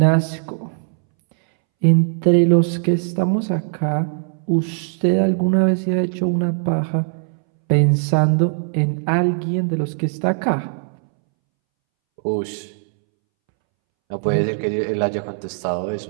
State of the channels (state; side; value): silent; left; 65 dB below the other